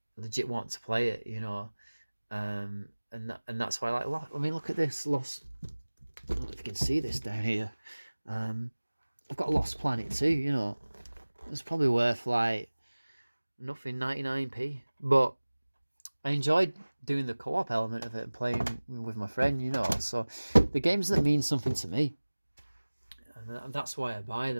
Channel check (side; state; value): both; inverted; correlation -1.00